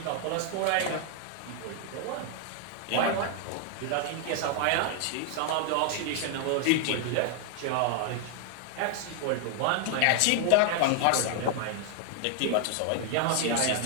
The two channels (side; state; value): both; different; correlation 0.00